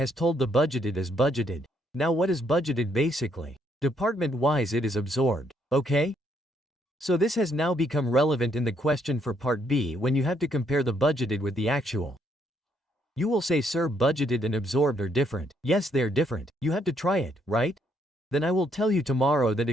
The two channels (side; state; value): both; normal; correlation 0.72